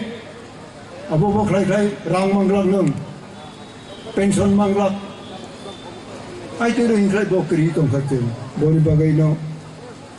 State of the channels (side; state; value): both; identical; correlation 1.00